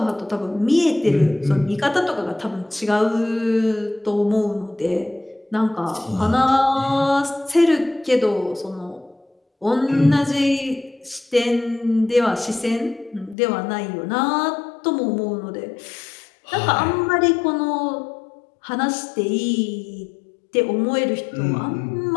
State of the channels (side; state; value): right; drops out; at 13.4 s